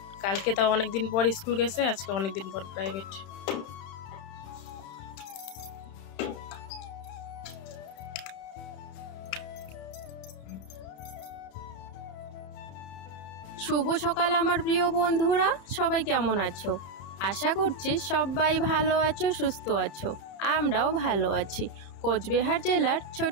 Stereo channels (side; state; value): right; late; 30 ms